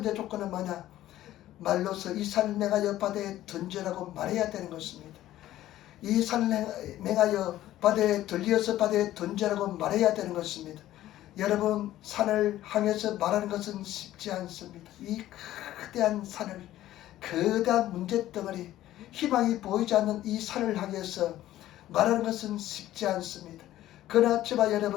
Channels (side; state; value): right; quieter; 14.0 dB